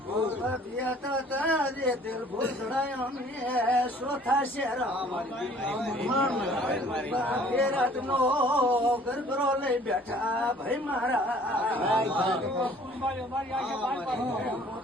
દિલ ભૂલ ચોથા શેર રાત નો ગરબરો લઈ બેઠા ભાઈ મારા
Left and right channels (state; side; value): normal; both; correlation 0.54